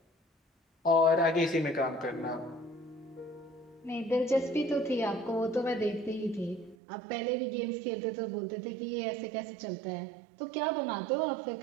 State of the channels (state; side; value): drops out; left; at 6.8 s